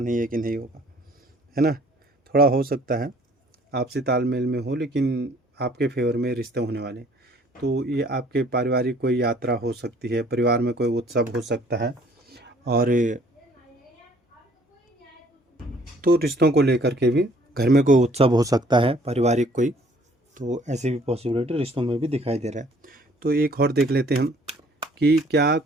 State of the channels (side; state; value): both; normal; correlation 0.58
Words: है कि नहीं होगा, है ना। थोड़ा हो सकता है आपसी तालमेल में हो, लेकिन आपके फेवर में रिश्ते होने वाले। तो ये आपके पारिवारिक कोई यात्रा हो सकती है, परिवार में कोई उत्सव हो सकता है, और तो रिश्तों को लेकर के भी घर में कोई उत्सव हो सकता है पारिवारिक कोई। तो ऐसी भी पॉसिबिलिटी रिश्तों में भी दिखाई दे रहा है। तो एक और देख लेते हैं हम कि क्या